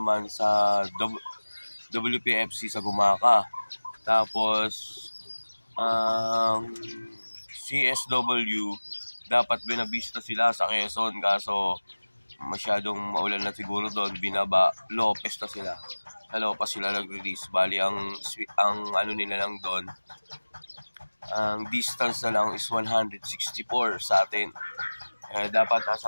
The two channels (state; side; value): inverted; both; correlation -1.00